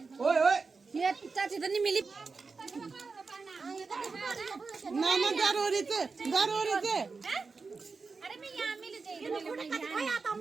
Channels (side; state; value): left; quieter; 4.5 dB